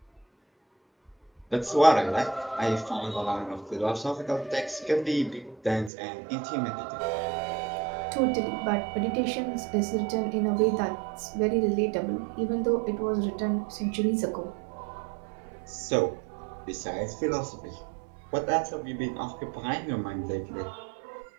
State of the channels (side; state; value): left; drops out; at 5.9 s